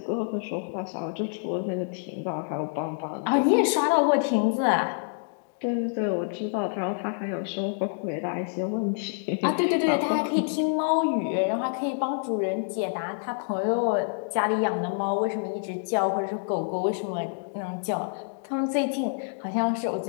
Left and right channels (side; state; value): right; silent; digital silence